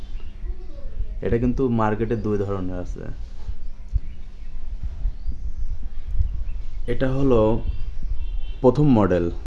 এটা কিন্তু মার্কেটে দুই ধরনের আছে। এটা হলো প্রথম মডেল।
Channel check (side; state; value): both; identical; correlation 1.00